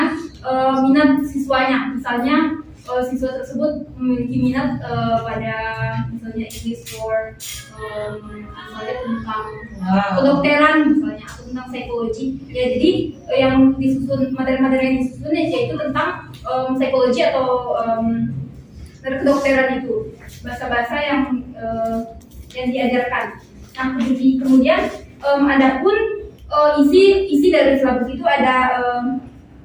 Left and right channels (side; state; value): both; identical; correlation 1.00